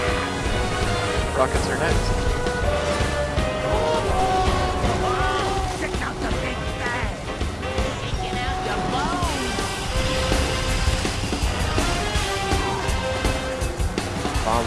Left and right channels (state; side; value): identical; both; correlation 1.00